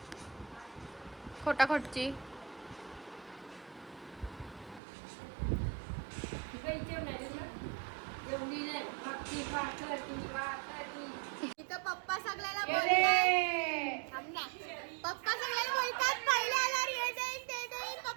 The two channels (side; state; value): left; drops out; at 4.8 s